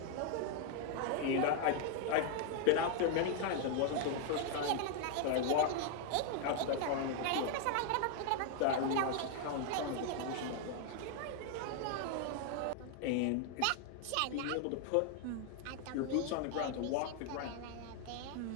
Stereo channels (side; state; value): both; different; correlation 0.00